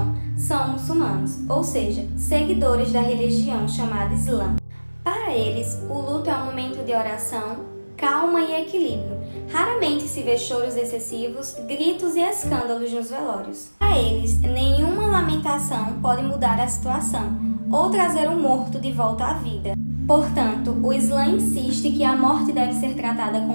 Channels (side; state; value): both; inverted; correlation -1.00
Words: são muçulmanos, ou seja, seguidores da religião chamada Islã. Para eles, o luto é um momento de oração, calma e equilíbrio. Raramente se vê choros excessivos, gritos e escândalos nos velórios. Para eles, nenhuma lamentação pode mudar a situação ou trazer um morto de volta à vida. Portanto, o Islã insiste que a morte deve ser tratada